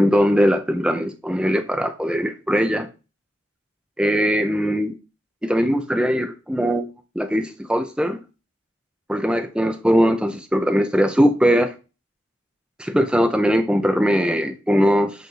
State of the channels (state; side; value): normal; both; correlation 0.91